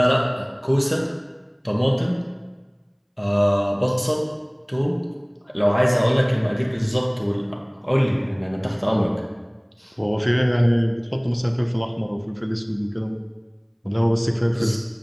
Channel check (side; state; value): both; identical; correlation 1.00